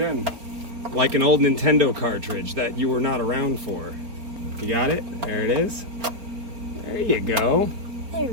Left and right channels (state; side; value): late; left; 4.4 ms